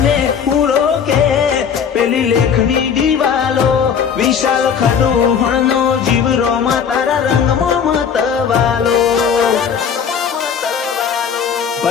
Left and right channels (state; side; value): quieter; right; 7.2 dB